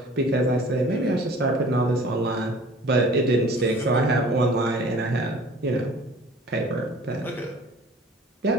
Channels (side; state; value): both; normal; correlation 0.47